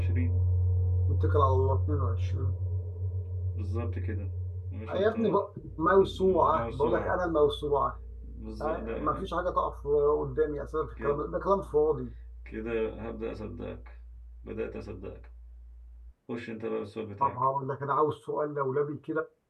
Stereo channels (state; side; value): identical; both; correlation 1.00